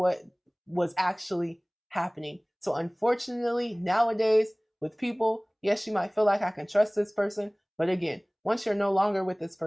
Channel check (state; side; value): identical; both; correlation 1.00